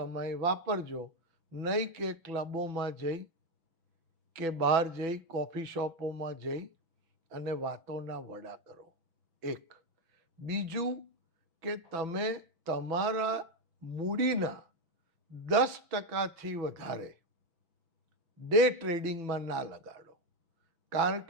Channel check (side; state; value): left; late; 6.0 ms